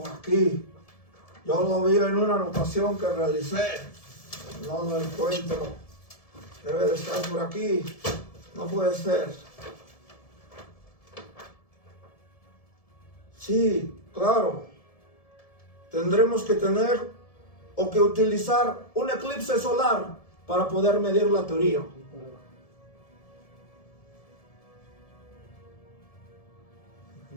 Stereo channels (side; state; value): right; late; 1.7 ms